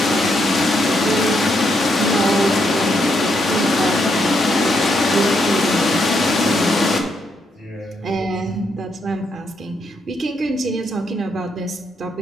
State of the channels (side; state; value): both; normal; correlation 0.77